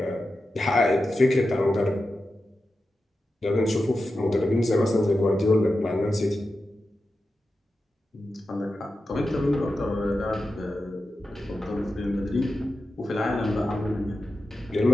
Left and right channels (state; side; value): normal; both; correlation 0.91